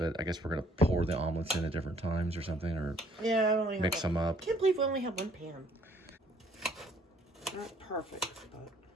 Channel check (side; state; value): both; normal; correlation 0.62